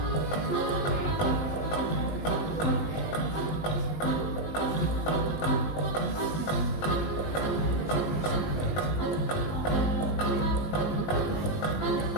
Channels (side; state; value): right; late; 19 ms